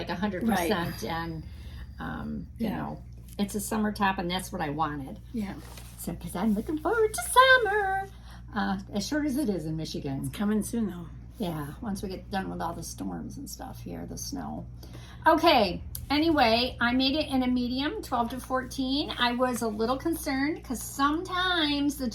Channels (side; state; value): both; identical; correlation 1.00